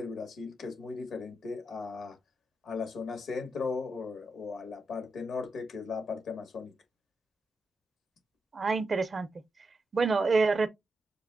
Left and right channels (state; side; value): normal; both; correlation 0.86